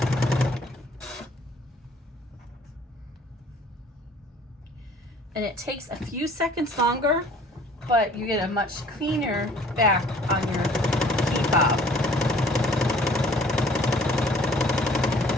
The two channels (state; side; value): normal; both; correlation 0.54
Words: And it takes a few seconds longer, but you get a much cleaner back on your key fob.